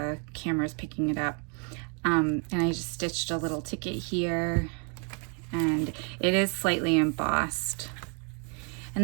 camera's picking it up. And I just stitched a little ticket here, and it is slightly embossed.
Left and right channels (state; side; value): quieter; left; 38.1 dB